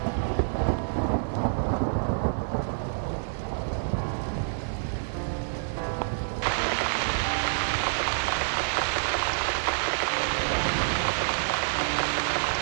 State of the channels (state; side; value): silent; left; digital silence